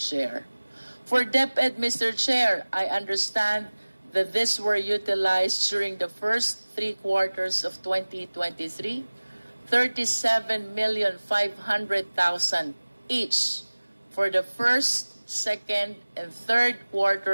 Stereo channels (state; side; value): inverted; both; correlation -1.00